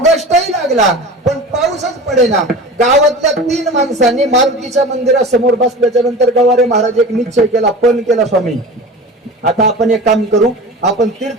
लागला पण पाऊसच पडेना. गावातल्या 3 माणसांनी मारुतीच्या मंदिरासमोर बसल्याच्या नंतर गवारे महाराज एक निश्चय केला, पण केला, स्वामी आता आपण एक काम करू, आपण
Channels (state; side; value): normal; both; correlation 0.35